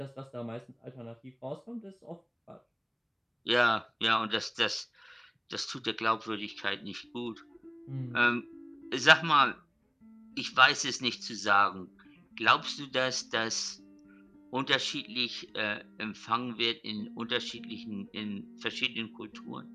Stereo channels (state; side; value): identical; both; correlation 1.00